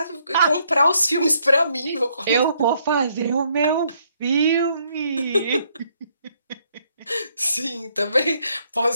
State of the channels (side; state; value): both; inverted; correlation -0.71